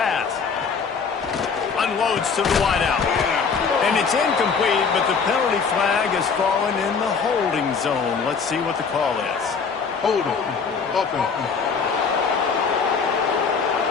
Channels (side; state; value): right; quieter; 5.6 dB